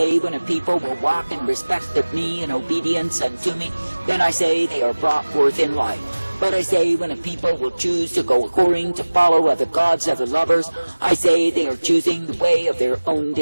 when a people will walk in respect of me and obedience unto me, then I say they are brought forth in life. But I say when a people will choose to go according to follow other gods, other lovers, I say they are choosing the way of their own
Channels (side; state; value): both; inverted; correlation -1.00